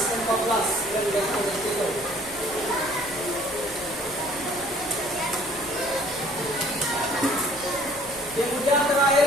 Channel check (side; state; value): left; noise; hum, 19 dB below the sound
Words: 14 yang ditulis itu? Kemudian